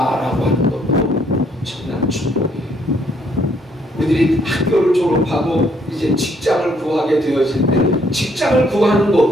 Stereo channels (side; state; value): both; normal; correlation 0.68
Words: 하는 것도 엄청난 축복이에요. 우리들이 학교를 졸업하고 이제 직장을 구하게 되어질 때 직장을 구하는